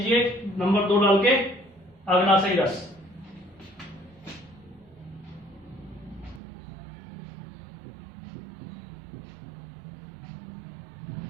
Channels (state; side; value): drops out; left; at 6.4 s